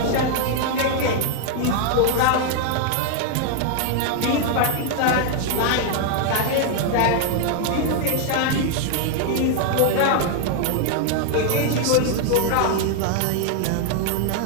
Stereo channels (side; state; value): both; different; correlation 0.00